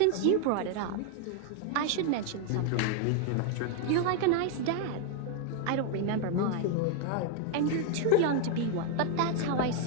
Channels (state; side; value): different; both; correlation 0.00